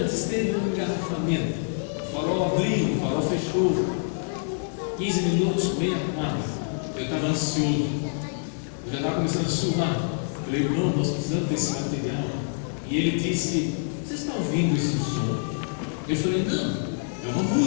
teve um engarrafamento. O farol abriu, o farol fechou. 15 minutos, meia quadra. Eu estava ansioso. Eu já estava começando a suar. Falei: irmão, nós precisamos desse material. E ele disse: você está ouvindo esse som? Eu falei: não, é uma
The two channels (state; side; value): silent; right; digital silence